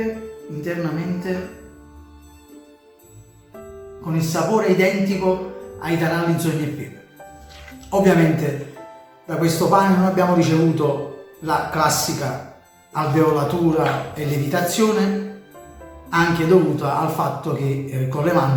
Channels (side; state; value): both; identical; correlation 1.00